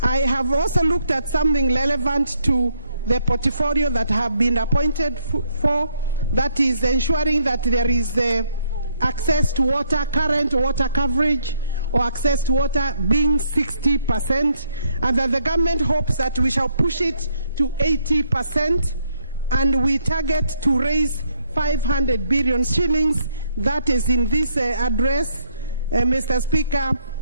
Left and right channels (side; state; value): both; inverted; correlation -0.72